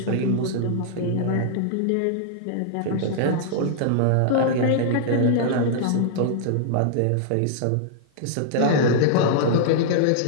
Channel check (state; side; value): different; both; correlation -0.01